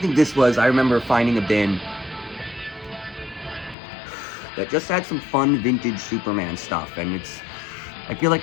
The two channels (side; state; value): right; drops out; at 3.8 s